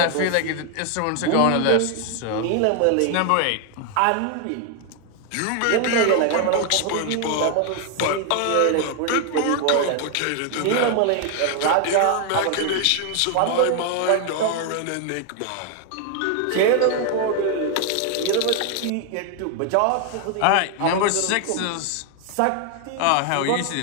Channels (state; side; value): different; both; correlation 0.00